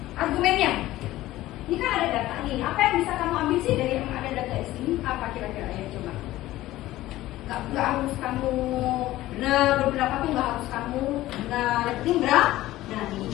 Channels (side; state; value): right; quieter; 16.0 dB